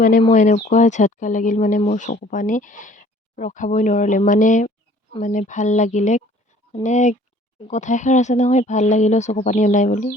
মানে মই এনেকুৱা ঝটকা লাগিল মানে মোৰ চকু পানী ৰখাবই নোৱাৰিলে মানে ভাল লাগিলে মানে কথা এষাৰ আছে নহয় ভাল লাগিলেও চকু পানী ওলাই বুলি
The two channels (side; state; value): both; normal; correlation 0.54